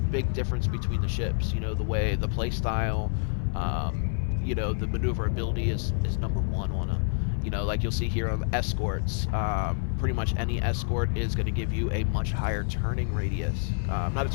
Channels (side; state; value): right; silent; 55 dB below the other